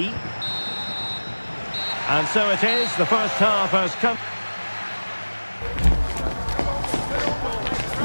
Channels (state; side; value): inverted; both; correlation -1.00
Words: And so it is, the first half has come.